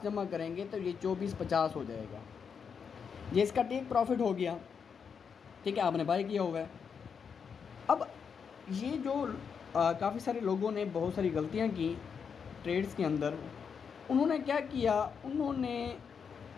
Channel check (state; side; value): quieter; right; 6.5 dB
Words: जमा करेंगे तो ये 2450 हो जाएगा। ये इसका टेक प्रॉफिट हो गया, ठीक है, आपने बाय किया हुआ है। अब ये जो काफ़ी सारे लोगों ने बहुत सारी गलतियां की ट्रेड्स के अंदर। उन्होंने क्या किया, उन्होंने